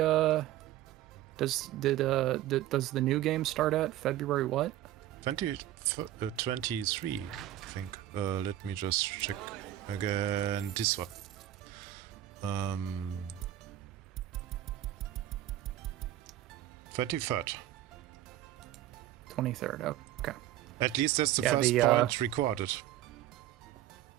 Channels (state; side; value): quieter; left; 13.2 dB